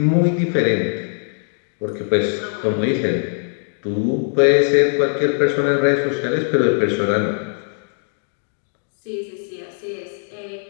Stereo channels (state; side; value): silent; right; digital silence